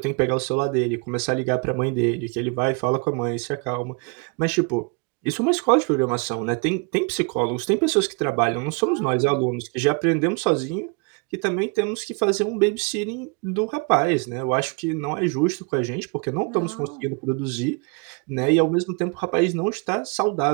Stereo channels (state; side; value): quieter; left; 33.1 dB